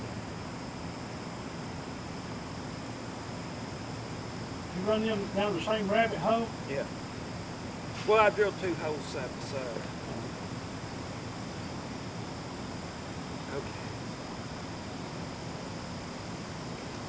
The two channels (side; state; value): both; identical; correlation 1.00